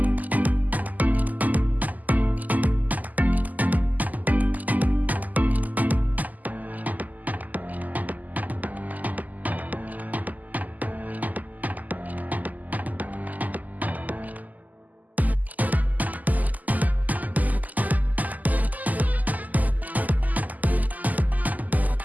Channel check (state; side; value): late; left; 0.080 ms